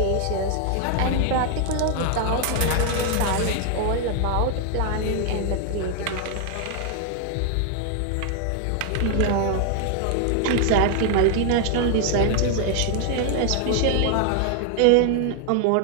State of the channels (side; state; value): both; different; correlation 0.00